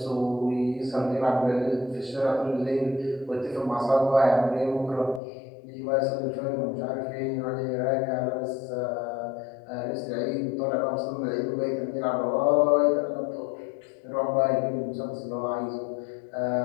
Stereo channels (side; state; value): right; drops out; at 5.2 s